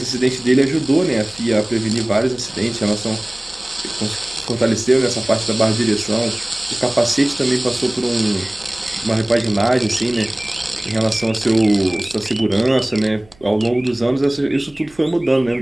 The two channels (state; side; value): noise; right; hum, 28 dB below the sound